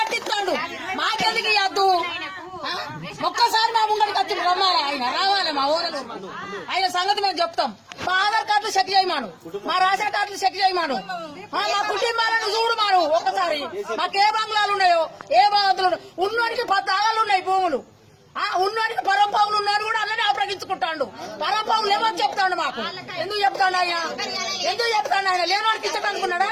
మాకెందుకు ఇవ్వద్దు? ఒక్కసారి మా ముంగడికి వచ్చి రమ్మాలి, ఆయన రావాలి మా ఊరలు. ఆయన సంగతి మేము చెప్తాం. మా ఆధార్ కార్డులు చెక్ చేయమాను, మా రేషన్ కార్డులు చెక్ చేయమాను, మా కుటుంబాలను చూడమాను. ఒక్కసారి మాకు ఏ బంగ్లాలు ఉన్నాయో, ఏ బాధలు ఉన్నోడికి 10 ఆగాలు ఉన్నాయి భూములు. ఉన్నోడికి పరంపావులు ఉన్నారు కూడా అలానే అప్రగించుకుంటాడు. పరంపావులు ఏమని చెప్తాడు మాకు? ఎందుకు చెప్తాడు ఆయన? ఎందుకు చెప్తాడు ఆయన? లేనివాడికి ఇచ్చటనుకున్నాడా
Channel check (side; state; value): both; identical; correlation 1.00